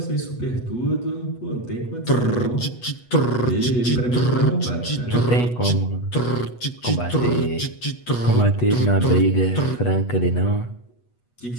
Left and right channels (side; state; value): right; late; 8.2 ms